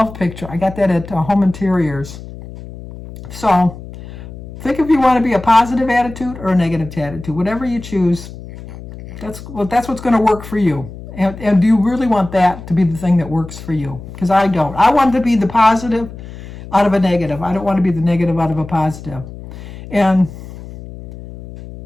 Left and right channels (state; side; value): noise; left; hum, 14 dB below the sound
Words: picture. I got that at Home Interiors. So think if you want to be a positive attitude or a negative attitude. Whatever you choose, that's what's going to work for you. And do you really want that to be the thing that works for you? Because I don't. I want to be the positive out of a negative. I don't want to be the negative out of a positive. And